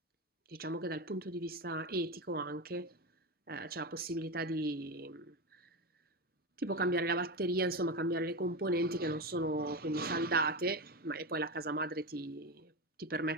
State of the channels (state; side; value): normal; both; correlation 0.18